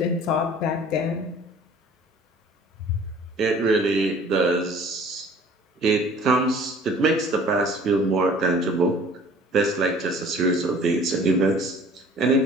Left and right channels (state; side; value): normal; both; correlation 0.50